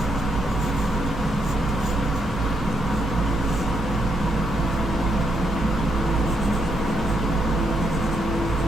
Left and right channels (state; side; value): normal; both; correlation 0.78